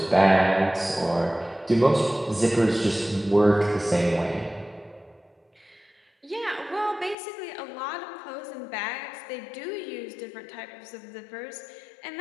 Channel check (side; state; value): right; drops out; at 7.2 s